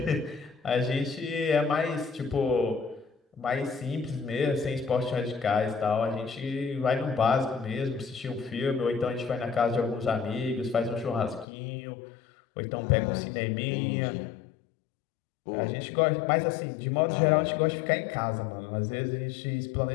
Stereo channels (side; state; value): right; drops out; at 11.5 s